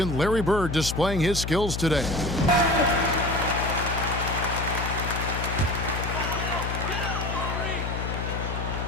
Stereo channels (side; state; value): left; noise; hum, 4 dB below the sound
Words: Larry Bird displaying his skills today.